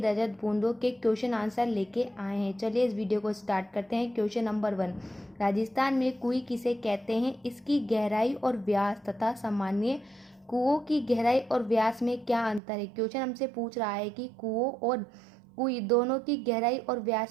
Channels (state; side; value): drops out; left; at 12.6 s